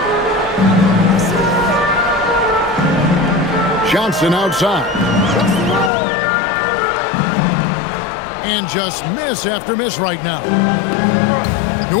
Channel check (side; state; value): right; drops out; at 5.9 s